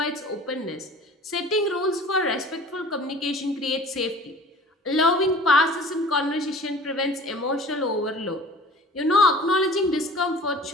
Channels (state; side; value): normal; both; correlation 0.45